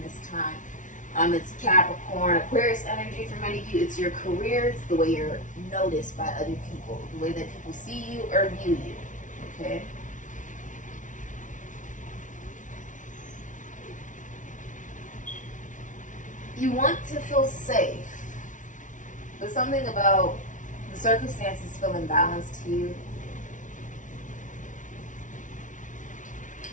this time. It's Capricorn, Aquarius energy for many of you. It's your career. It's the way you're noticed by other people. The way that people see you or view you. Okay? You want to feel safe. But something about the circumstances feel imbalanced to you.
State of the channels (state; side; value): late; right; 0.37 ms